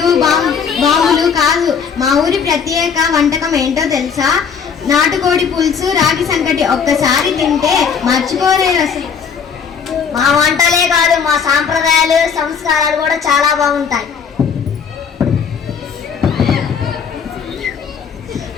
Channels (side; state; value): right; quieter; 6.6 dB